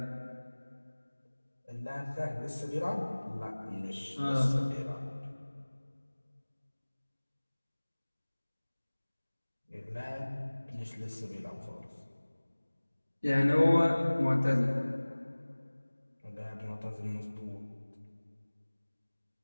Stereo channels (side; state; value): both; inverted; correlation -1.00